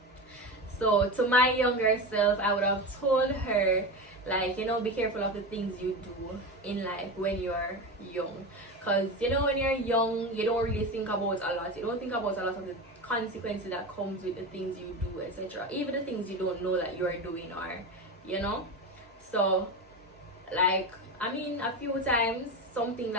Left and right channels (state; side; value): normal; both; correlation 0.23